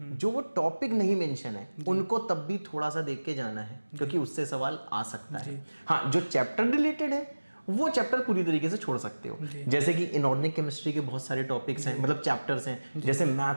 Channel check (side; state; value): both; inverted; correlation -1.00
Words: जो वो टॉपिक नहीं मेंशन है, उनको तब भी थोड़ा सा देख के जाना है, क्योंकि उससे सवाल आ सकता है। हाँ, जो चैप्टर रिलेटेड है वो चैप्टर पूरी तरीके से छोड़ सकते हो। जैसे कि इनऑर्गेनिक केमिस्ट्री के बहुत सारे टॉपिक्स हैं, मतलब चैप्टर्स हैं, जैसे